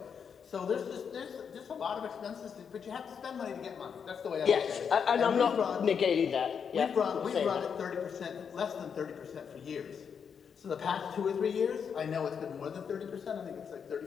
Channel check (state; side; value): quieter; right; 6.9 dB